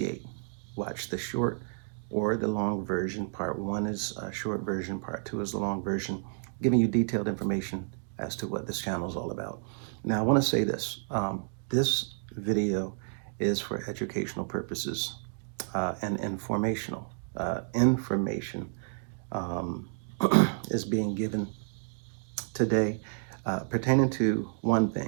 Watch the short or the long version. Part one is a short version, part two is the long version, giving you detailed information as to what this channel is all about. Now, I want to say this. This video is for educational purposes and informational. Information um, is being given today pertaining to one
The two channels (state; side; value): silent; left; digital silence